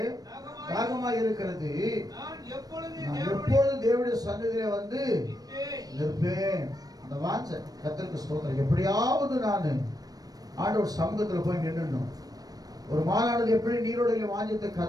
தாகமாக இருக்கிறது, நான் எப்பொழுதும் தேவனுடைய சன்னதியிலே வந்து நிற்பேன். அந்த வாஞ்ச கர்த்தருக்கு ஸ்தோத்திரம். எப்படியாவது நான் ஆண்டவர் சமூகத்தில் போய் நின்னுடணும். ஒரு மானானது எப்படி நீரோடையில் வாஞ்சத்தை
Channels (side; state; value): left; late; 0.18 ms